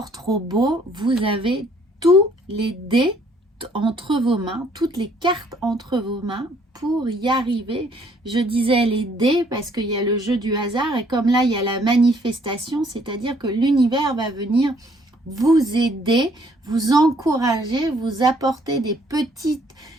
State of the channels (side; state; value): both; normal; correlation 0.64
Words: trop beau. Vous avez tous les dés entre vos mains, toutes les cartes entre vos mains pour y arriver. Je disais les dés parce qu'il y a le jeu du hasard et comme là il y a la manifestation, c'est-à-dire que l'univers va venir vous aider, vous encourager, vous apporter des petits